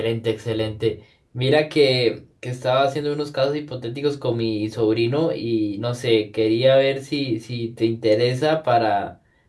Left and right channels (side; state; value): both; identical; correlation 1.00